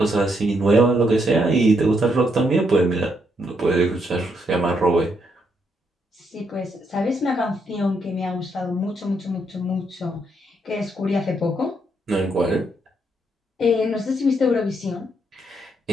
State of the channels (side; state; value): both; normal; correlation 0.76